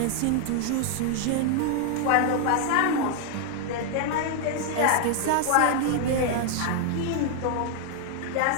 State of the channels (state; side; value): different; both; correlation 0.00